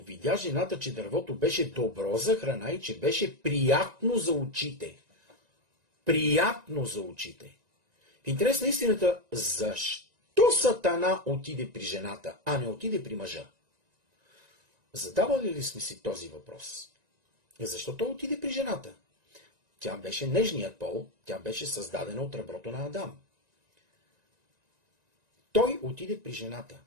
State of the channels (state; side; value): late; left; 1.9 ms